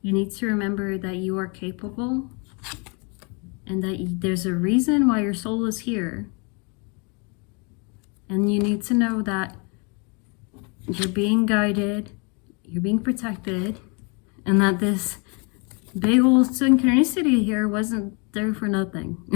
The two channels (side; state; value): right; quieter; 33.3 dB